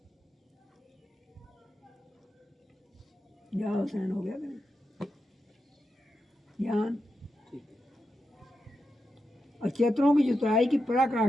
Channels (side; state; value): both; normal; correlation 0.88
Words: क्या हुसैन हो गया ज्ञान। अचेतनों की जुताई की